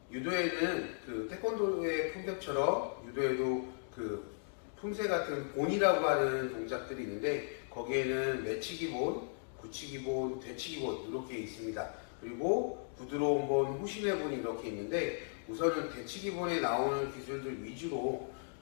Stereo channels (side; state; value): right; silent; digital silence